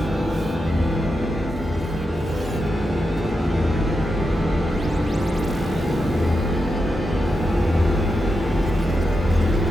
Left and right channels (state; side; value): normal; both; correlation 0.87